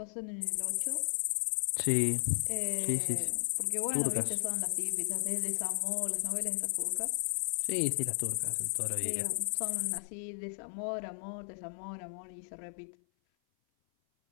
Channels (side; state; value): right; silent; 55 dB below the other